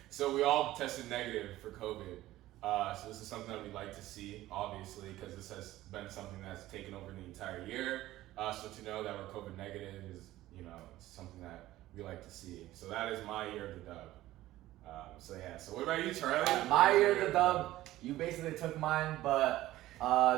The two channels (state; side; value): quieter; left; 15.7 dB